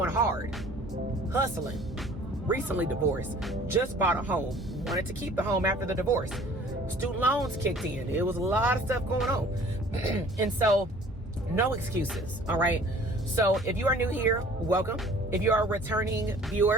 hard, hustling, recently divorced, just bought a home, wanted to keep the home after the divorce. Student loans kicked in. It was a lot of stuff going on. And so no excuses. All right. So if you are new here, welcome. If you are a returning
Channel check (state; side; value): normal; both; correlation 0.51